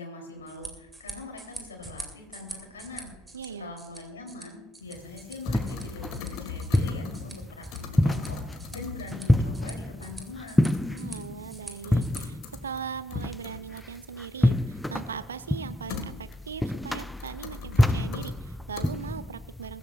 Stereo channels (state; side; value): normal; both; correlation 0.81